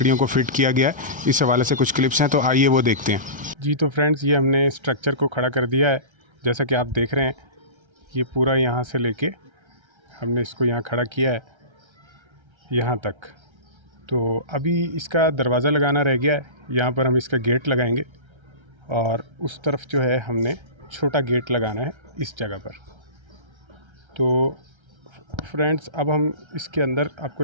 को फिट किया गया है, इस हवाले से कुछ क्लिप्स हैं, तो आइए वो देखते हैं। जी तो फ्रेंड्स, ये हमने स्ट्रक्चर को खड़ा कर दिया है। जैसा कि आप देख रहे हैं, ये पूरा यहाँ से लेके हमने इसको यहाँ खड़ा किया है यहाँ तक। तो अभी इसका दरवाज़ा लगाना रह गया है। यहाँ पर हम इसका गेट लगाएंगे और उस तरफ जो है हमने छोटा गेट लगाना है इस जगह पर। तो फ्रेंड्स, अब हम इसके अंदर आपको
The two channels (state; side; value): late; left; 1.3 ms